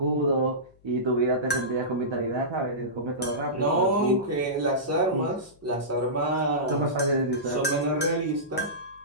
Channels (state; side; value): noise; left; hum, 30 dB below the sound